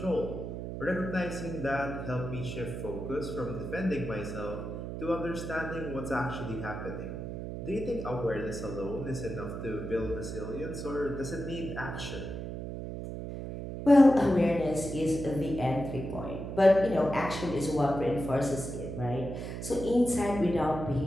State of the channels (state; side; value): noise; right; hum, 6 dB below the sound